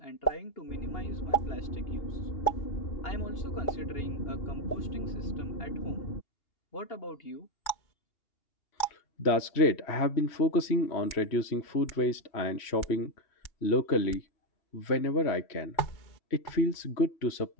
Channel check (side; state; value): right; late; 3.1 ms